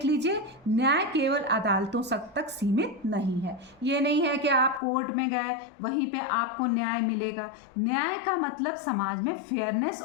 लीजिए। न्याय केवल अदालतों तक सीमित नहीं है। ये नहीं है कि आप कोर्ट में गए वहीं पे आपको न्याय मिलेगा। न्याय का मतलब समाज में फेयरनेस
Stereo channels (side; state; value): right; drops out; at 4.8 s